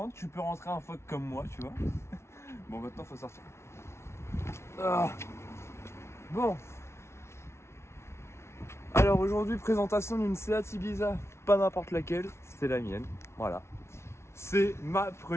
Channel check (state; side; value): late; right; 0.13 ms